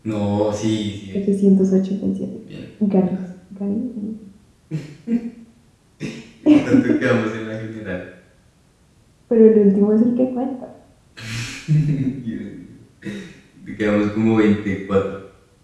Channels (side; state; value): both; identical; correlation 1.00